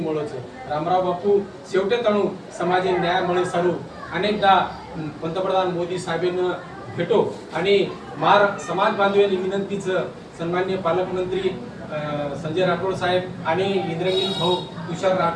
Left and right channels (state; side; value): identical; both; correlation 1.00